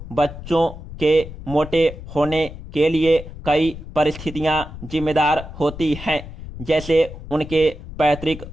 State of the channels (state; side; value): noise; left; rumble, 12 dB below the sound